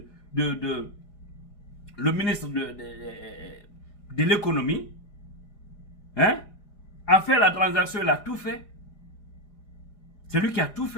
le ministre de l'économie, hein, a fait la transaction, il a tout fait. C'est lui qui a tout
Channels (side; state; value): right; late; 5.0 ms